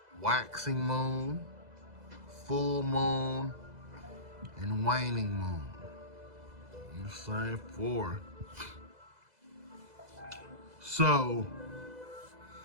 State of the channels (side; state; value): left; late; 2.0 ms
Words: waxing moon, full moon, and waning moon. The same 4. So,